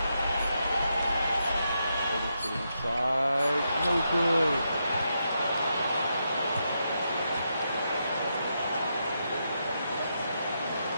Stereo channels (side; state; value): both; inverted; correlation -0.83